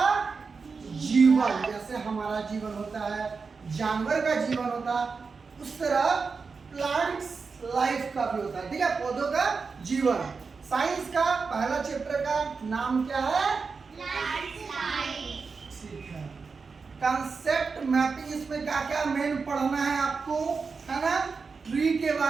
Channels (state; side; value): quieter; left; 4.9 dB